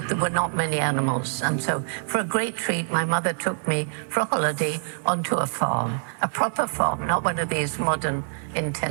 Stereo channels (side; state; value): left; silent; 58 dB below the other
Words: there were not many animals. And so for a great treat, my mother took me for a holiday onto a farm, a proper farm, not one of these modern